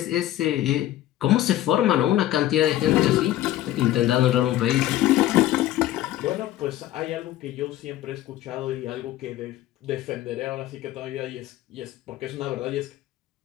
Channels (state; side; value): quieter; right; 14.0 dB